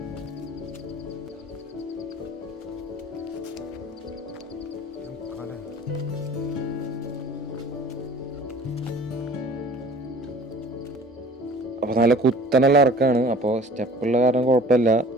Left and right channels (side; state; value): both; normal; correlation 0.47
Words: അപ്പോൾ നല്ല കുത്തനുള്ള ഇറക്കാണ്. അപ്പോൾ സ്റ്റെപ്പുള്ള കാരണം കുഴപ്പമില്ല,